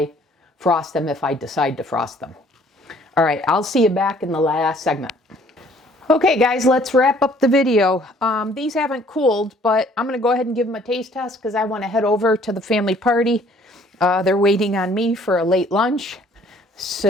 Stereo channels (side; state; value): both; normal; correlation 0.58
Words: frost them, if I decide to frost them. All right, I'll see you back in the last segment. Okay, guys, let's wrap up the video. These haven't cooled, but I'm going to go ahead and give them a taste test because I want to head over to the family party. They're waiting on me for a late lunch,